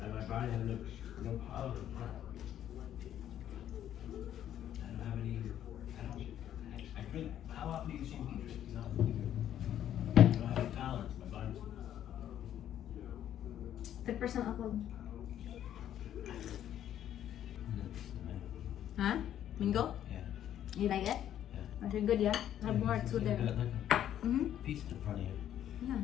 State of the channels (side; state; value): right; quieter; 10.9 dB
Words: my body has no power. I don't have any. I drink. How often do you see me drink? No. I don't have any tolerance. My body's. 3% alcohol. Huh? Mingo? Yeah. You like it? Yeah. That's really good, yeah? Have more It's too like there. Like a Mm-hmm. piece in front of you. Yeah.